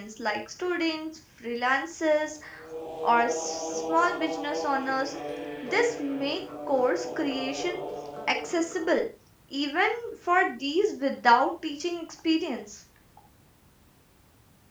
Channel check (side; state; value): both; identical; correlation 1.00